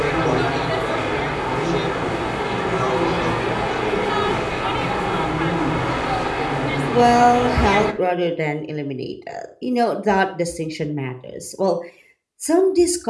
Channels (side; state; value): both; identical; correlation 1.00